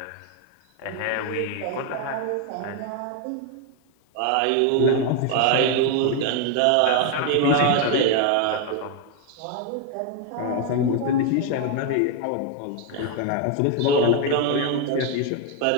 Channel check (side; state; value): both; different; correlation 0.01